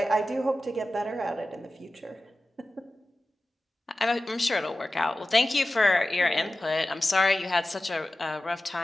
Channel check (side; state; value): both; normal; correlation 0.95